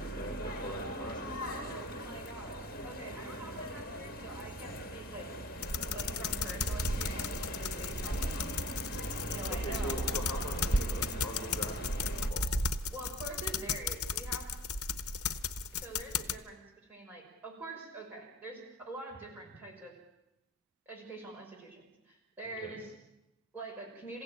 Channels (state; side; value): normal; both; correlation 0.45